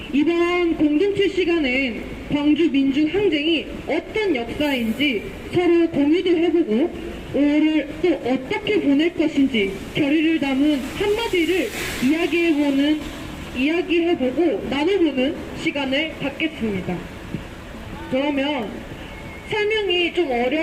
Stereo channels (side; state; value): both; identical; correlation 1.00